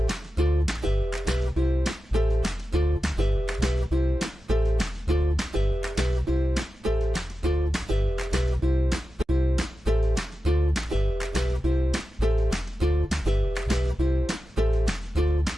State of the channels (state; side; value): normal; both; correlation 0.93